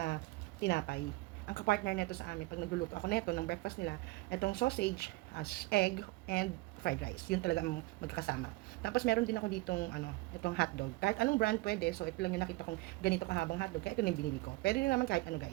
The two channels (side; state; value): left; quieter; 21.3 dB